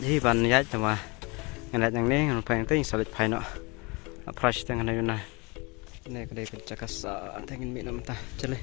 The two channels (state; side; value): quieter; right; 27.9 dB